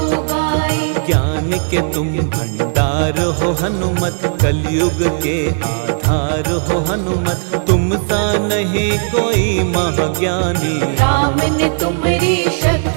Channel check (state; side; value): silent; left; 65 dB below the other